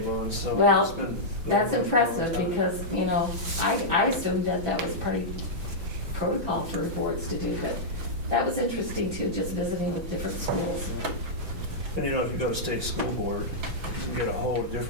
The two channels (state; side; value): late; left; 6.1 ms